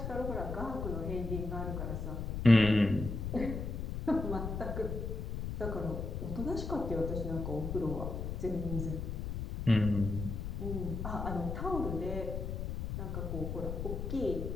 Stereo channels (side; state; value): left; noise; rumble, 4 dB below the sound